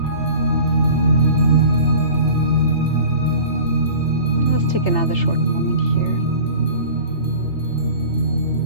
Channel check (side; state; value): right; late; 3.3 ms